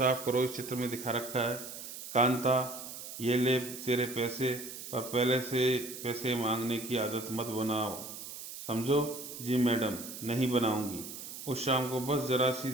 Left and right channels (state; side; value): noise; right; hiss, 10 dB below the sound